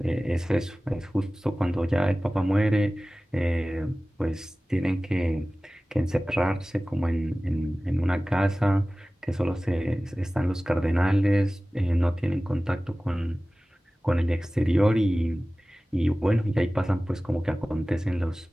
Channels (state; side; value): normal; both; correlation 0.97